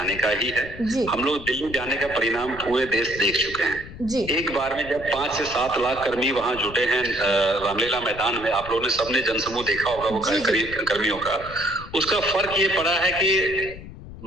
का ही है। हम लोग दिल्ली जाने का परिणाम पूरे देश देख चुके हैं। एक बार में जब 5 से 7 लाख कर्मी वहां जुटे हैं रामलीला मैदान में, आप लोगों ने सबने जनसमूह देखा होगा वो कर्मियों का, उसका फर्क ये पड़ा है कि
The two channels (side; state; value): left; noise; rumble, 14 dB below the sound